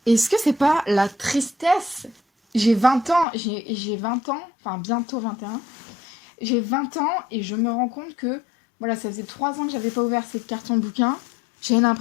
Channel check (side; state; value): right; drops out; at 3.2 s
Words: Est-ce que c'est pas la tristesse? J'ai 20 ans, j'ai 20 ans, enfin bientôt 21. J'ai 20 ans et je me rends compte que, voilà, ça faisait 3 ans que j'avais pas ouvert ces cartons bouquins. J'ai